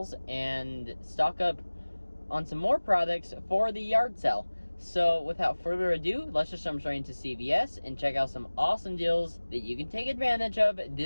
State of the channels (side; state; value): both; inverted; correlation -1.00